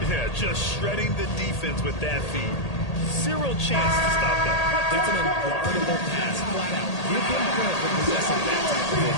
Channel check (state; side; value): late; right; 1.8 ms